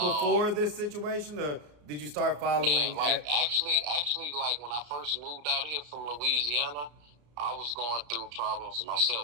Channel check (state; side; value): late; left; 34 ms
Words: this situation, or did you start following? Yeah, actually, like when I first moved out here from Louisiana, I was going through problems